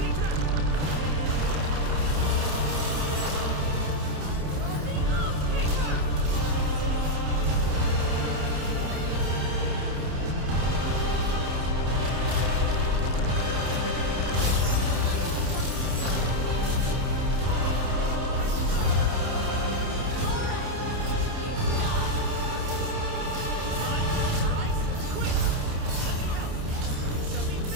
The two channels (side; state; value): left; late; 29 ms